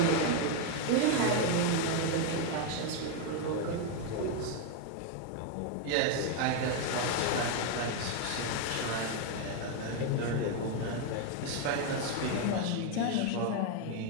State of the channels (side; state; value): both; different; correlation 0.01